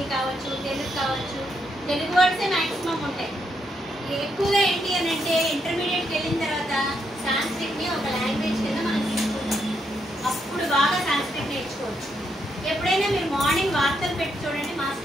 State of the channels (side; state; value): both; normal; correlation 0.78